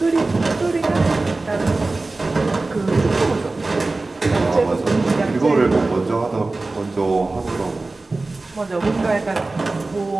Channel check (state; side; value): quieter; left; 3.3 dB